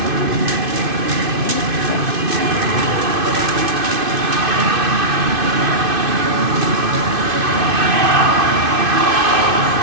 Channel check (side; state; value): left; late; 2.5 ms